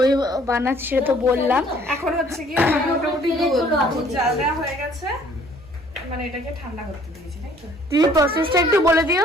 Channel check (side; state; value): both; normal; correlation 0.58